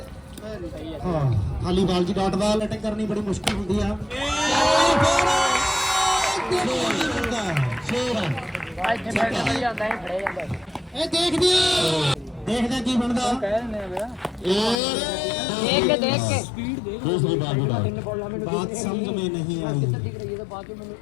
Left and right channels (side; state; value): right; drops out; at 14.8 s